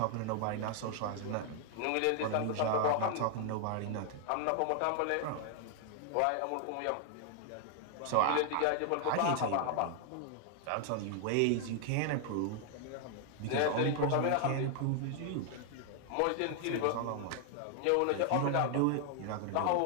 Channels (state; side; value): different; both; correlation 0.00